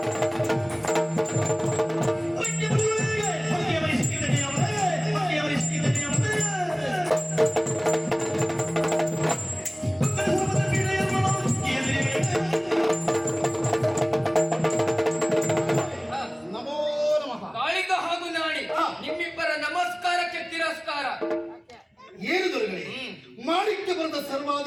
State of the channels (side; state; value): both; identical; correlation 1.00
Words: ನಿಮ್ಮಿಬ್ಬರ ನಮಸ್ಕಾರಕ್ಕೆ ತಿರಸ್ಕಾರ. ಏನು ದೊರೆಗಳೇ, ಮಾಡಿಕ್ಕೆ ಬರೆದ